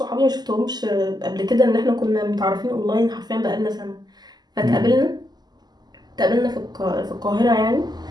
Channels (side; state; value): left; late; 0.20 ms